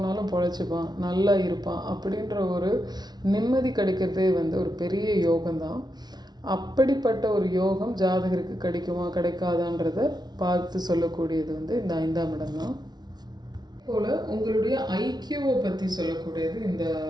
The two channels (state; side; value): late; left; 0.20 ms